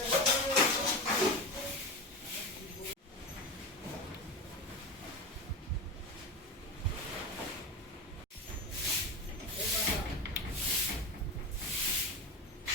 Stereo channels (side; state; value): both; normal; correlation 0.23